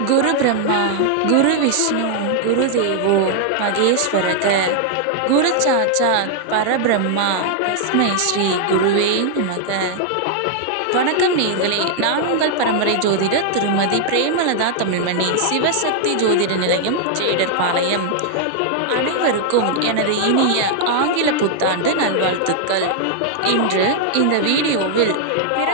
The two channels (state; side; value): different; both; correlation -0.01